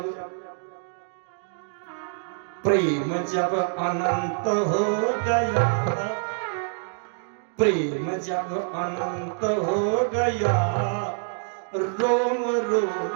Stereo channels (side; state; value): left; silent; digital silence